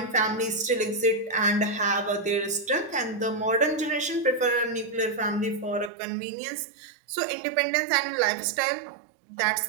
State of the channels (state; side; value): drops out; left; at 5.9 s